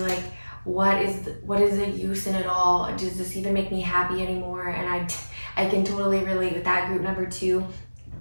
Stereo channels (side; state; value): both; inverted; correlation -1.00